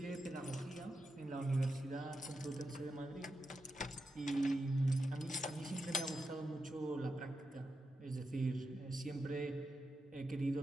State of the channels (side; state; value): both; normal; correlation 0.87